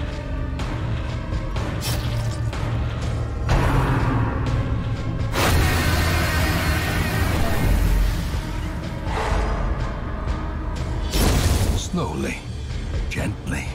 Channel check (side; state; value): both; identical; correlation 1.00